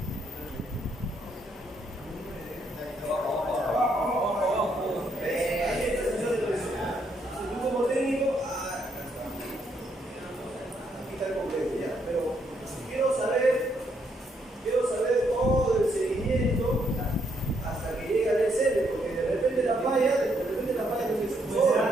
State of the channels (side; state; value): both; normal; correlation 0.74